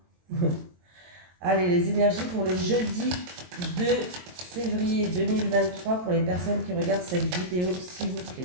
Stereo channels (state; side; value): late; left; 22 ms